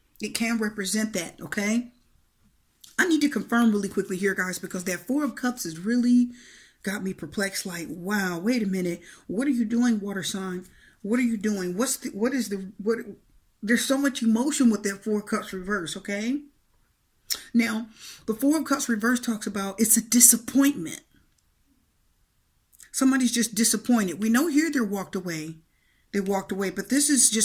It can represent that, okay? I need to confirm really quickly here, guys, because that 4 of Cups has really got me perplexed. Like, wow, wait a minute. What are you doing, water sign? What are you doing? There's so much emotion with that 4 of Cups reverse, okay? Now, the 4 of Cups reverse talks about it's a disappointment. Somebody's just disappointed. We know here they walked away, but this is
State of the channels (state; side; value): identical; both; correlation 1.00